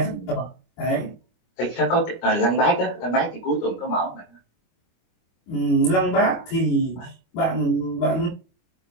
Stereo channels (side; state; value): right; late; 25 ms